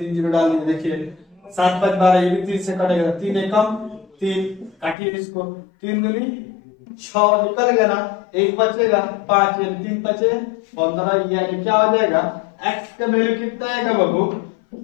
डाल दीजिए। देखिए 7 5 12, ये भी 3 से कटेगा, 3 एकम 3, काटिए इसको, 3 दूनी 6 निकल गया ना, 1 बचेगा 5 यानी 3 बचे 15, यानी क्या हो जाएगा x का वैल्यू कितना आएगा बाबू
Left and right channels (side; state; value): right; drops out; at 5.0 s